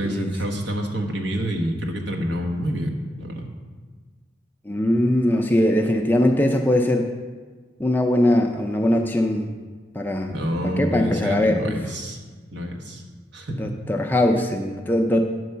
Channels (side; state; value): both; normal; correlation 0.84